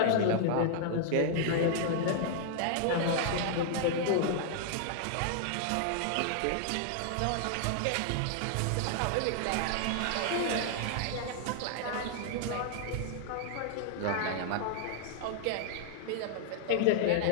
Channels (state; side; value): different; both; correlation -0.01